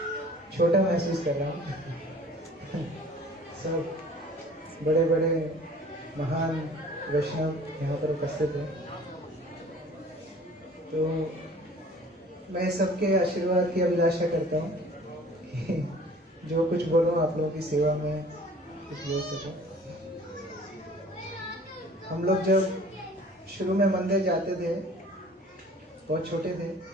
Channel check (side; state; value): both; normal; correlation 0.49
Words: छोटा महसूस कर रहा हूँ। सब बड़े बड़े महान वैष्णव यहाँ पर उपस्थित हैं, तो मैं सबके आशीर्वाद की अभिलाषा करता हूँ कि जो कुछ बोलूँ आप लोगों की सेवा में कुछ बोल सकूँ। हम लोग जब शुरू में मंदिर जाते थे, बहुत छोटे थे,